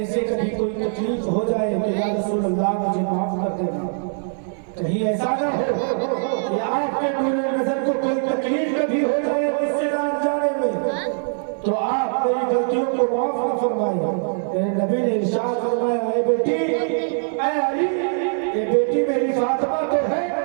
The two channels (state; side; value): silent; left; 64 dB below the other